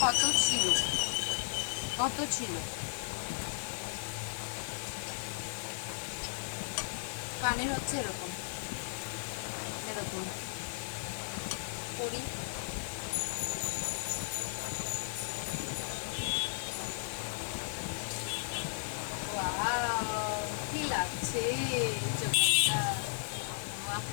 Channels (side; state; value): right; silent; digital silence